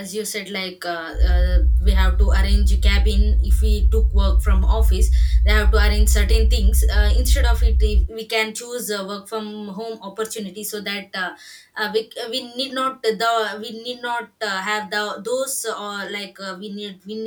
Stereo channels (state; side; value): identical; both; correlation 1.00